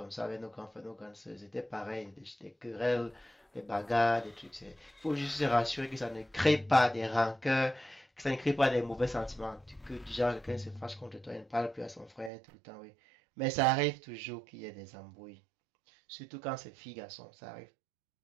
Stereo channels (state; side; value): drops out; left; at 12.3 s